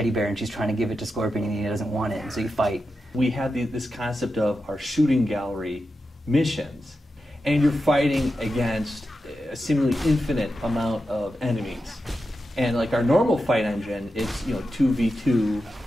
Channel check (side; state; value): both; normal; correlation 0.90